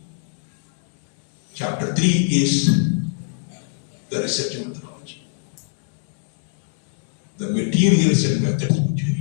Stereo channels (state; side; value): silent; right; 63 dB below the other